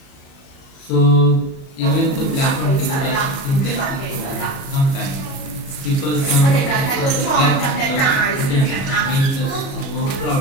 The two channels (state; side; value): late; right; 37 ms